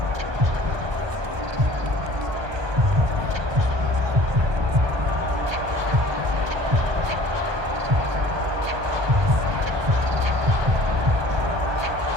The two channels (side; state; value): left; late; 1.2 ms